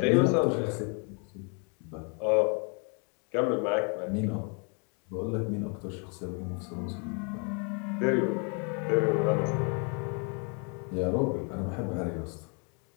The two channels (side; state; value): right; quieter; 37.2 dB